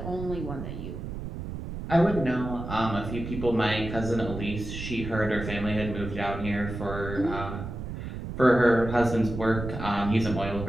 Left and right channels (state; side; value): noise; right; rumble, 7 dB below the sound